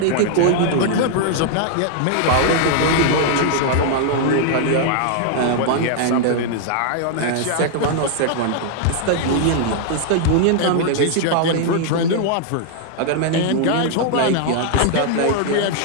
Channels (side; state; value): both; different; correlation 0.00